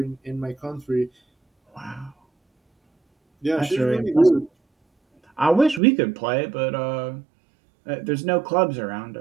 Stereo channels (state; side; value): drops out; left; at 5.8 s